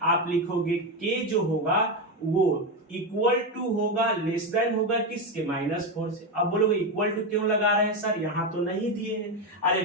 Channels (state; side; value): normal; both; correlation 0.12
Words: आप लिखोगे के जो होगा वो इक्वल टू होगा, लेस देन होगा किसके, -4 से। अब बोलोगे इक्वल टू क्यों लगा रहे हैं सर, यहाँ तो नहीं दिए हैं। अरे